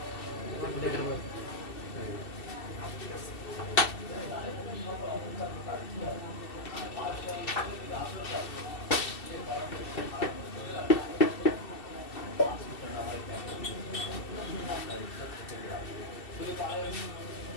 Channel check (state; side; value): late; right; 2.7 ms